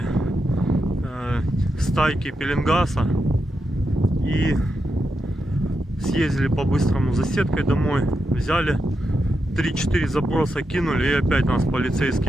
стайки пеленгаса. И съездили по-быстрому за сеткой домой. Взяли 3-4 заброса, кинули, и опять нас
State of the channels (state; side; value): normal; both; correlation 0.86